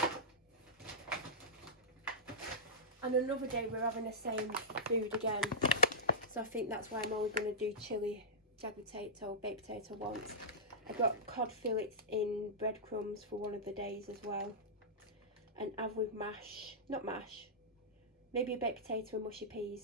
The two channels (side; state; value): both; normal; correlation -0.13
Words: And another day we're having the same food again. So I think that's why I'm only going to do chilli, jagged potato, baked potato once. I got cod fillets in breadcrumbs for one of the days as well. And have with mash, not mash, maybe a baked potato and mushy